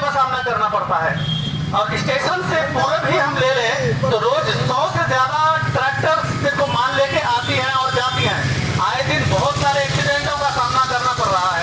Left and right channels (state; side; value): identical; both; correlation 1.00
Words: सामना करना पड़ता है। और स्टेशन से पूरे भी हम ले लें तो रोज 100 से ज्यादा ट्रैक्टर सिर्फ माल लेके आती हैं और जाती हैं। आए दिन बहुत सारे एक्सीडेंटों का सामना करना पड़ रहा